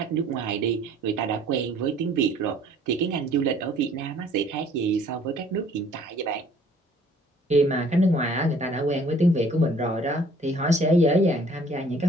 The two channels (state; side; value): normal; both; correlation 0.56